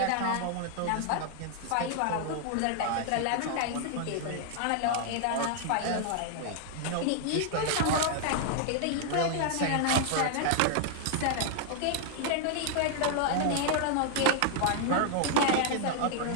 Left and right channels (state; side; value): different; both; correlation -0.01